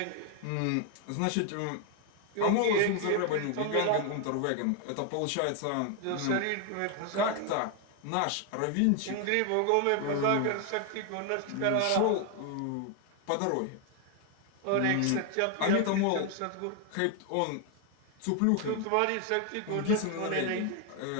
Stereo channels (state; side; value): different; both; correlation 0.01